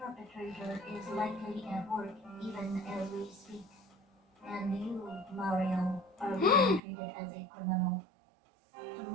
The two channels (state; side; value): drops out; left; at 6.8 s